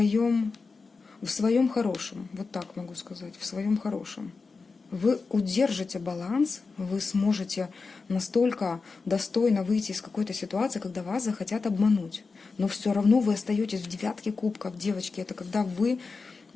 в своем хорошем, вот так могу сказать, в своем хорошем. Вы удержите баланс, вы сможете настолько достойно выйти из какой-то ситуации, когда вас захотят обмануть. Но все равно вы остаетесь в девятке кубков, девочки. Это когда вы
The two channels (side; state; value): right; quieter; 4.4 dB